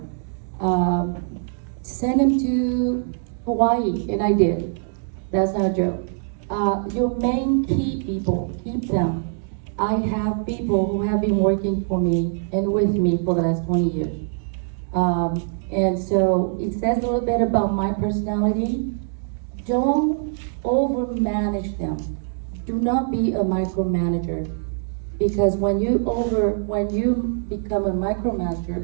Send them to Hawaii, and I did. That's not a joke. Your main key people, keep them. I have people who have been working for me and with me for the last 20 years. And so it says a little bit about my personality. Don't overmanage them. Do not be a micromanager, because when you become a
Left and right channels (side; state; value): left; silent; digital silence